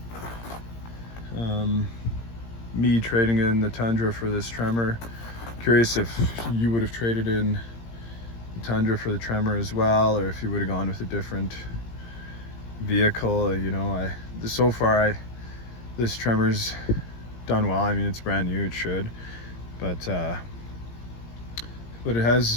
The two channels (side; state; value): right; late; 17 ms